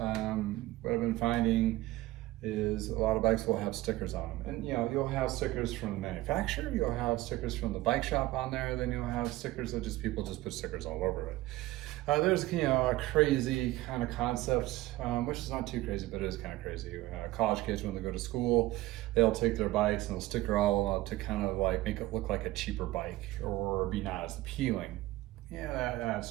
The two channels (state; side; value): quieter; left; 17.8 dB